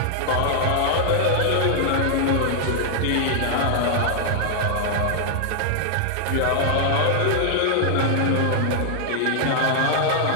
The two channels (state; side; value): different; both; correlation 0.00